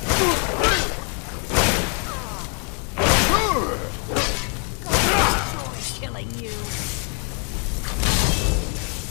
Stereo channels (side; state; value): right; quieter; 36.4 dB